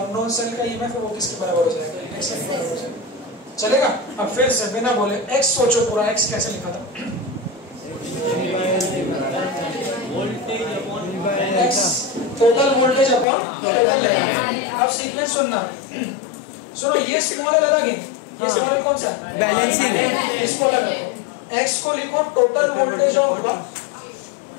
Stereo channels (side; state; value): right; drops out; at 13.2 s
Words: सेल का ईएमएफ है वो किसके बराबर हो जाएगा, x के बराबर हो जाएगा। चलेगा। अब फिर से बिना बोले x सोचो पूरा। x कैसे लिखा था, x total voltage upon total length. अब सीक्वेंस सुनना, सुनो, ये स्मॉल एल अलग है, ये स्मॉल एल कौन सा है, बैलेंसिंग, इसको अलग रखो। x को लिखो total voltage of